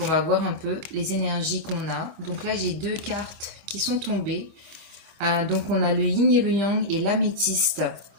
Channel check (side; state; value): left; late; 25 ms